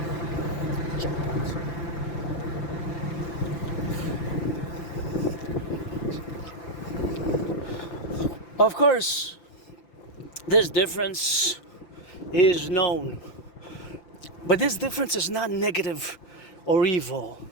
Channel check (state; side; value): late; right; 5.9 ms